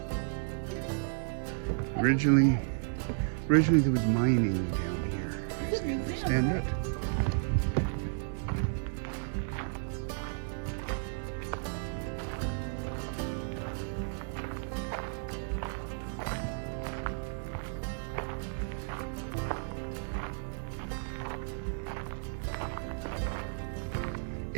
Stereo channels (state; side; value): silent; left; digital silence